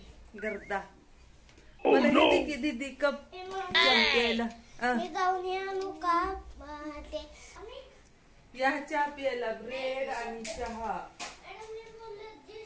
गर्दा. मला येते की दीदी कप प्यायला. मी जाऊन आणू का ते? या चहा प्यायला. ब्रेड आणि चहा.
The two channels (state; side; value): identical; both; correlation 1.00